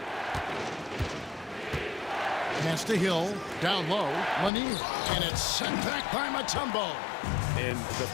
Pass to Hill. Down low. Lanier. And it's sent back by Mutombo. And the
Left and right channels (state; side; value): drops out; right; at 4.5 s